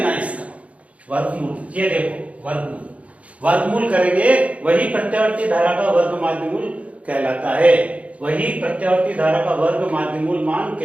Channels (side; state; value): left; late; 0.065 ms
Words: है इसका, वर्गमूल। ये देखो वर्गमूल करेंगे, वही प्रत्यावर्ती धारा का वर्ग माध्यमूल कहलाता है, वही प्रत्यावर्ती धारा का वर्ग माध्यमूल मान